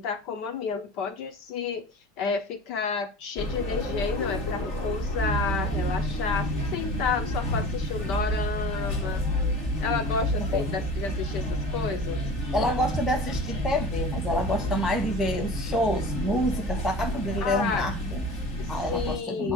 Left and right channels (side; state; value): both; normal; correlation 0.38